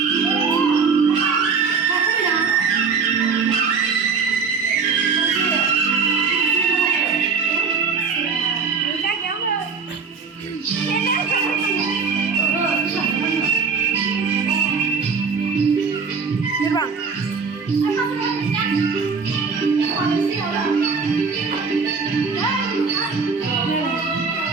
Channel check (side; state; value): left; quieter; 5.3 dB